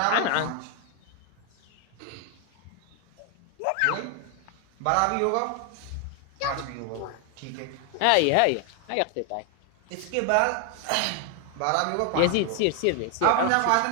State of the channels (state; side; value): different; both; correlation 0.00